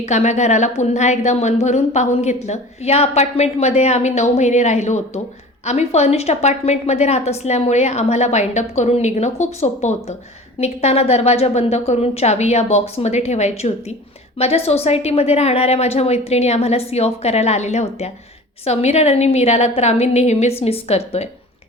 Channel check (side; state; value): both; normal; correlation 0.40